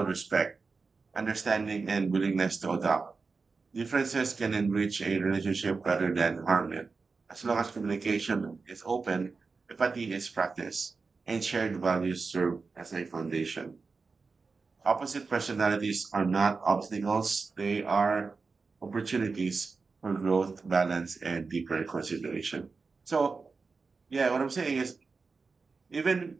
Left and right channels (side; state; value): left; quieter; 4.4 dB